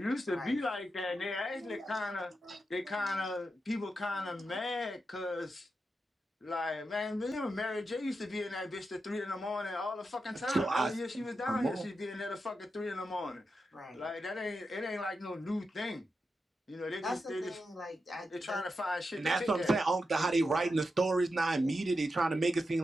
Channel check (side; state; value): both; normal; correlation 0.88